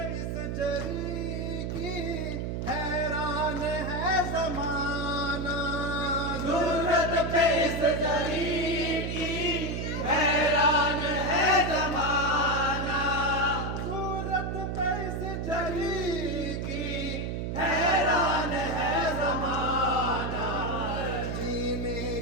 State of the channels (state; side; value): noise; right; hum, 3 dB below the sound